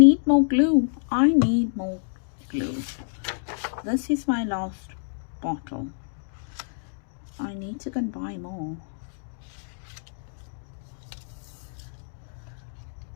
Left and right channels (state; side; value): silent; right; digital silence